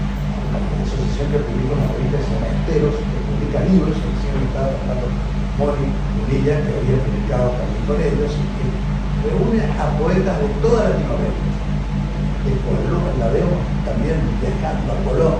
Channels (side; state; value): both; identical; correlation 1.00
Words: asociación que publica una revista que se llama Esteros, que publica libros, que recién estaba tratando Moni Unilla, que había publicado también con ellos, y que reúne a poetas de toda Latinoamérica. La veo también viajando a